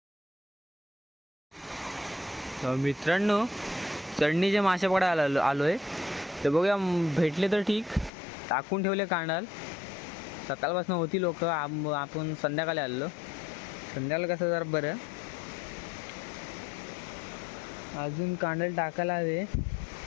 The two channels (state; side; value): drops out; right; at 8.1 s